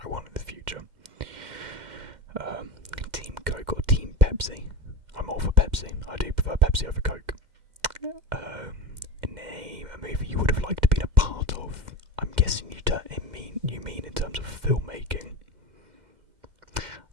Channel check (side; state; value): left; late; 2.1 ms